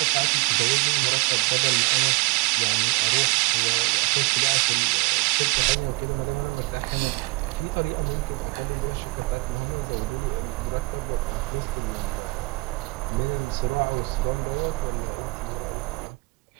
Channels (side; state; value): left; quieter; 25.4 dB